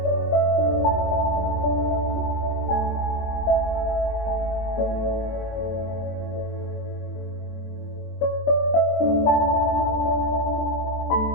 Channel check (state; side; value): late; right; 23 ms